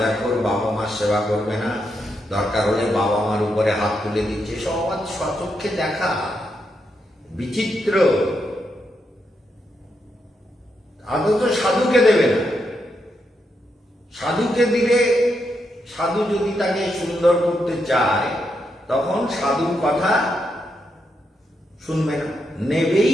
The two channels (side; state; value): both; normal; correlation 0.82